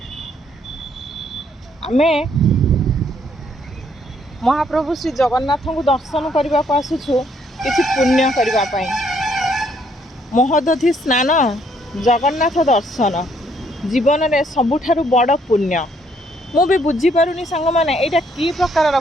आमे महाप्रभु श्री जगन्नाथ को दर्शन करने को आसुछु किछि पुण्य करबा पई। महोदधि स्नान जगन्नाथ दर्शन जीवन में सबुठारु बड़ पुण्य। मु भी बुझी पारुनी सांग माने एटा की प्रकार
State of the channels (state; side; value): normal; both; correlation 0.68